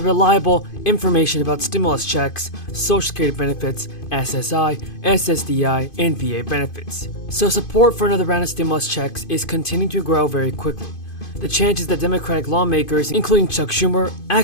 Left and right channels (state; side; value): late; right; 2.5 ms